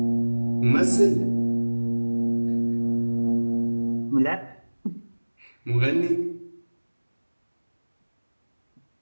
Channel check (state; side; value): inverted; both; correlation -1.00